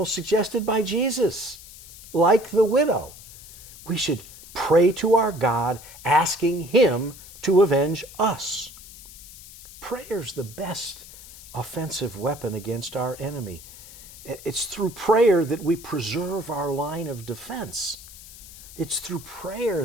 suggested by Jesus. Like the widow, we should pray to our God, asking Him to avenge us. Prayer's the best offensive weapon against our enemy. It's through prayer that we preserve our line of defense. It's through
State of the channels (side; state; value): left; noise; hiss, 17 dB below the sound